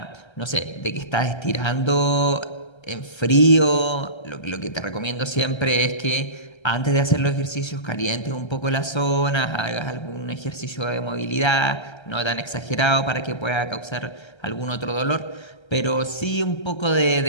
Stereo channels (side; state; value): right; late; 1.3 ms